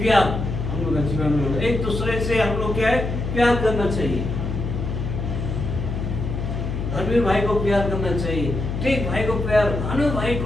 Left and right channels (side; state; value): left; noise; hum, 4 dB below the sound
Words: हम लोग का जीवन में होना, एक दूसरे से हम लोग क्या है प्यार करना चाहिए। धर्मवीर भाई को प्यार करना चाहिए, टेक भाई को प्यार, भानु भाई